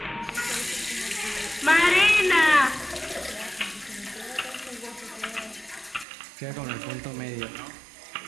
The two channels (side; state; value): left; drops out; at 6.1 s